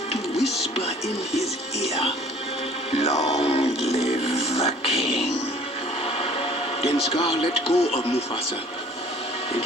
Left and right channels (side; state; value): both; normal; correlation 0.52